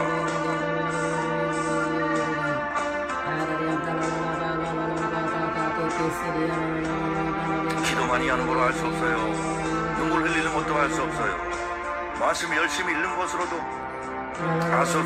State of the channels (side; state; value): both; identical; correlation 1.00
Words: 기도 많이 하는 걸로 할 수 없어요. 눈물 흘리는 것도 할 수 없어요. 말씀 열심히 읽는 것으로도 할 수